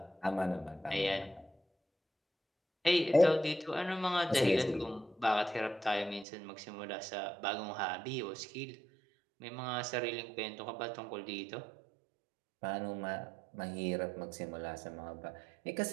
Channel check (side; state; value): left; drops out; at 6.2 s